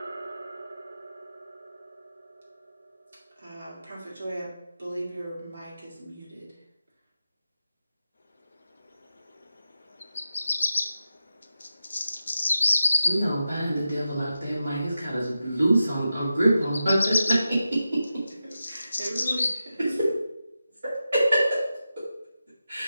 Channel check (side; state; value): both; inverted; correlation -0.91